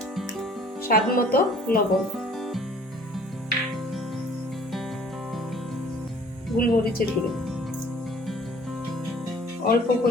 স্বাদ মতো লবণ, গোলমরিচের গুঁড়ো, অল্প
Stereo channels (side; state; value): both; normal; correlation 0.53